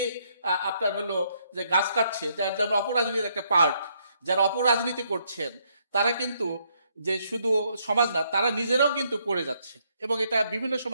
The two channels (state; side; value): inverted; both; correlation -0.72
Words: আপনার হলো যে গাছ কাটছে যারা অপরাজনীতির একটা পার্ট, যারা অপরাজনীতি করছেন তারা কিন্তু যে শুধু সমাজ না, তারা নিজেরাও কিন্তু পড়ে যাচ্ছে। এবং এটা বিভিন্ন